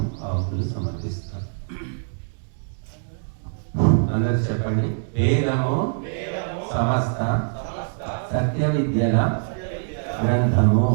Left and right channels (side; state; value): left; silent; 63 dB below the other